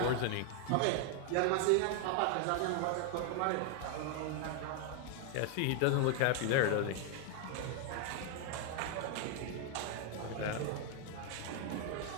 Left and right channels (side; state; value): both; different; correlation 0.00